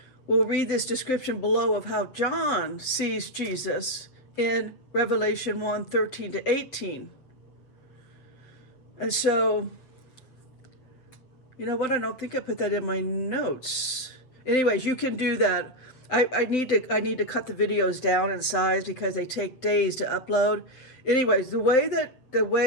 we'll read this description below of how John sees Jesus in Revelation 1:13-18. And so, you know what? I don't think I put that in my notes. Anyways, you can do that. I need to cut the videos down in size because they take days to upload. Anyways, the way,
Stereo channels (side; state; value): right; late; 7.8 ms